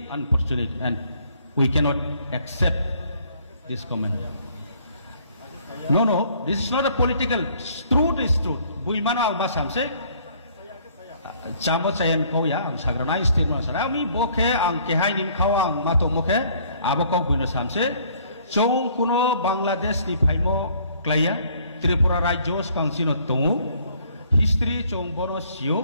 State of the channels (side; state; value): both; inverted; correlation -0.61